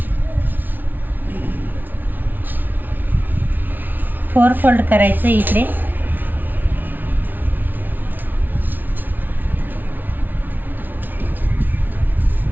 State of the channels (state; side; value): late; left; 0.086 ms